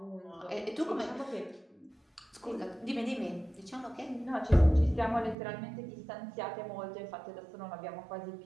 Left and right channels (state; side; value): drops out; left; at 5.4 s